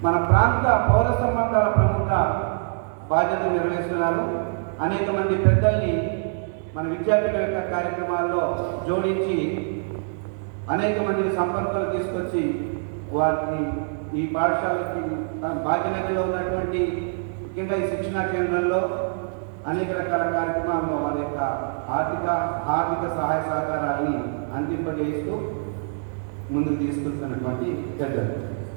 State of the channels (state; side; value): silent; left; digital silence